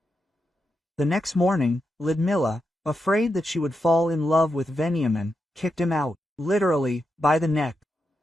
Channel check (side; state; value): both; normal; correlation 0.86